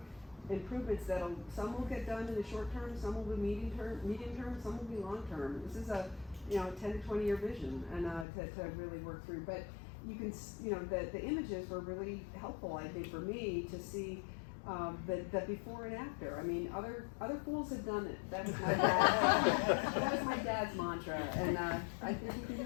improvements some will get done in the short term, some will be medium term, some will be long term. This is a 10 to 20 year vision and to really work through. But you can, the images were really helpful, I think, for me to see the before and after. I mean, other fools have done it. That was my dad's mantra, and I think we can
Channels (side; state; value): right; drops out; at 8.2 s